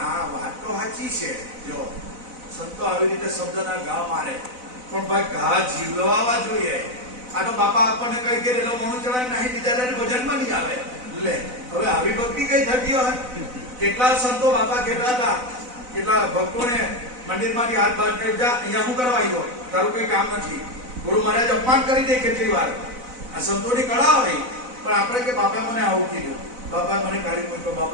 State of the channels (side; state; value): left; late; 4.0 ms